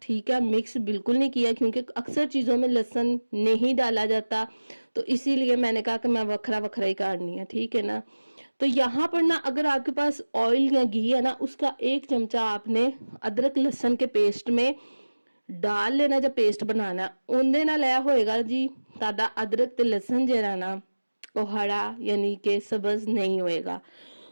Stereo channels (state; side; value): inverted; both; correlation -1.00